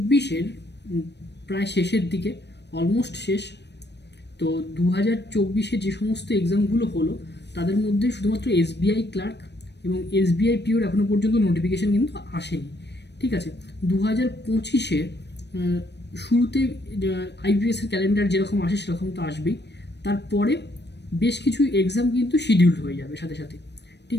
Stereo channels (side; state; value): right; late; 0.50 ms